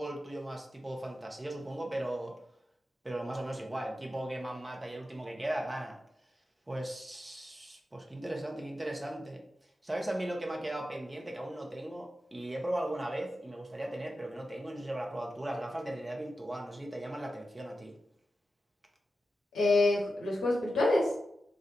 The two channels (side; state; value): both; normal; correlation 0.91